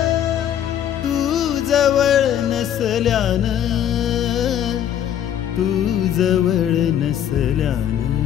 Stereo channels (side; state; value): right; quieter; 10.1 dB